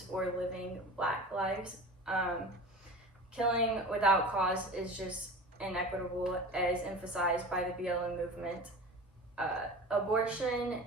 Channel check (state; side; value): normal; both; correlation 0.35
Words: or living Black lives. Killing without cause is just inequitable, as emphasized by the BLM movement. Abortion